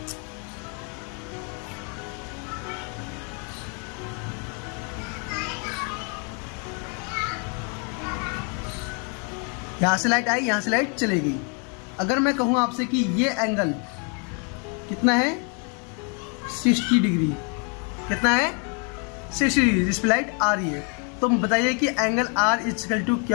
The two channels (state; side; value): quieter; right; 37.5 dB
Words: यहां से लाइट आई, यहां से लाइट चलेगी। अगर मैं कहूं आपसे कि ये एंगल कितना है 60 डिग्री, कितना है 60 डिग्री, जिस पे लाइट आ रही है, तो बताइए कि एंगल आर इक्वल टू